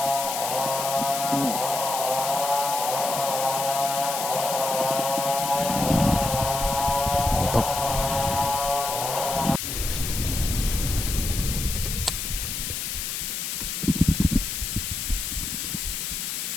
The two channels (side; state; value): left; noise; hiss, 3 dB below the sound